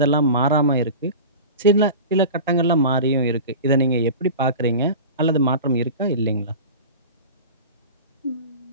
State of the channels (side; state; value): both; inverted; correlation -0.34